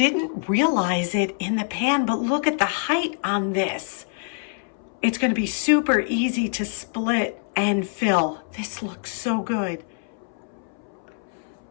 realize it in the pan, but look at the height on this. It's going to be super easy to split and fill. This looks so good.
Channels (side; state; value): right; silent; 62 dB below the other